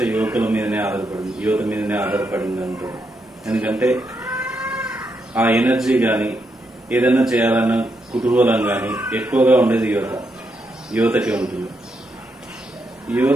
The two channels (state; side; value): normal; both; correlation 0.81